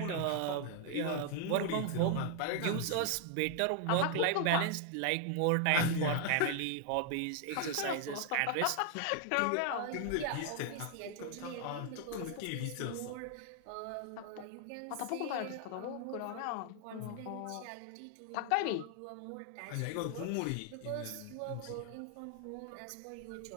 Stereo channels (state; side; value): different; both; correlation 0.00